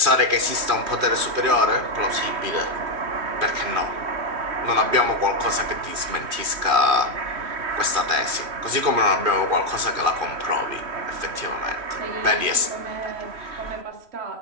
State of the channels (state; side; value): late; left; 3.1 ms